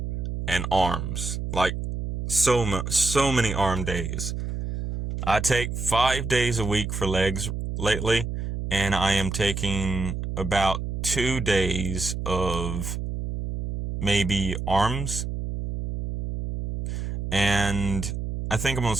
and arms. Like so many arm days. I take 5 days a week for legs lately, and I am taking about 2 days of maybe arms. And I think I'm going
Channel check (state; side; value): noise; right; hum, 4 dB below the sound